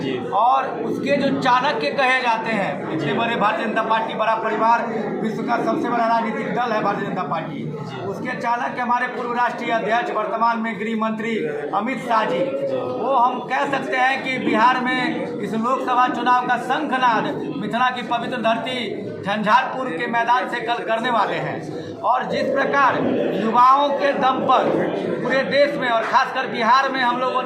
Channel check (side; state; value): both; identical; correlation 1.00